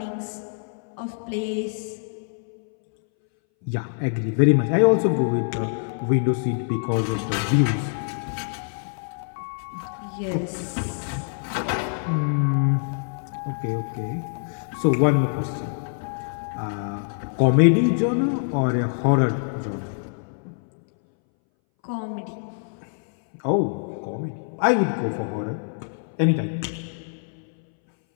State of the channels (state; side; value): silent; right; 61 dB below the other